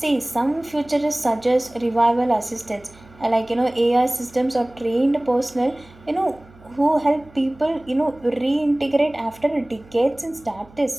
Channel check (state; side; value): noise; right; hum, 25 dB below the sound